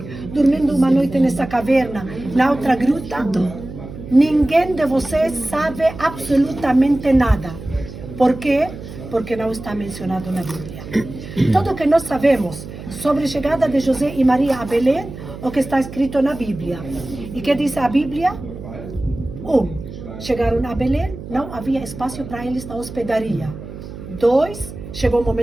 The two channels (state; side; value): noise; right; hum, 12 dB below the sound